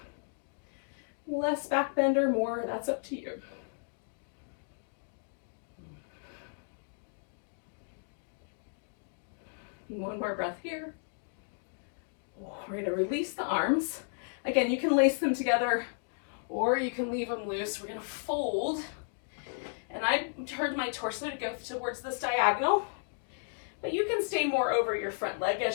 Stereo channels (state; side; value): silent; right; digital silence